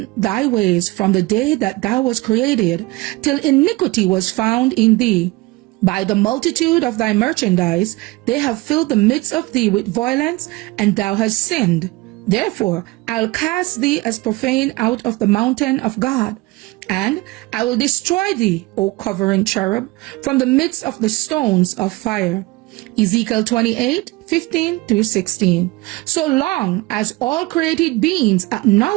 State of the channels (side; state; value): left; quieter; 21.5 dB